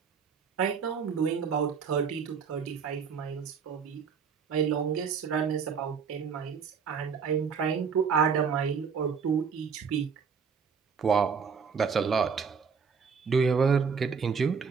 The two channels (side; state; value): left; quieter; 6.2 dB